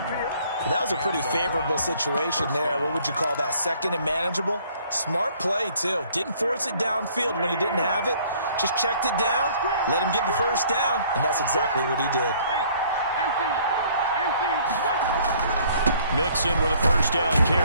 That was a pretty favorable situation there. What would you call that? 2nd and manageable? Smart play, too. Didn't force it downfield when he didn't have it. Just checked it down, let him get the 1st down, and that's exactly what he did. Mixon with a 1st down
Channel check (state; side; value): inverted; both; correlation -0.59